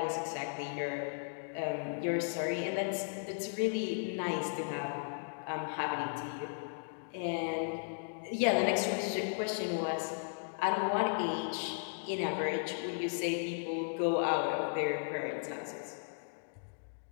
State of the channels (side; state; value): right; silent; digital silence